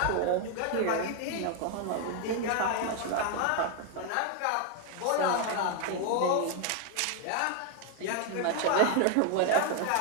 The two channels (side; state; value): both; different; correlation 0.00